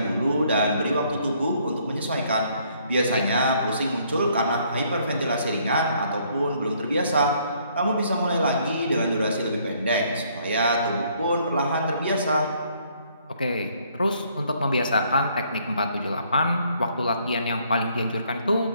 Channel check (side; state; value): both; inverted; correlation -0.66